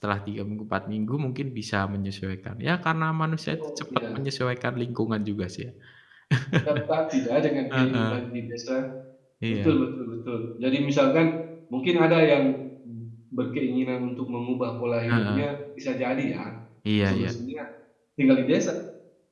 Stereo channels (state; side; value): identical; both; correlation 1.00